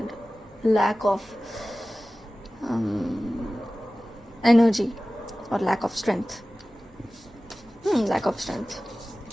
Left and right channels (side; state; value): both; normal; correlation 0.97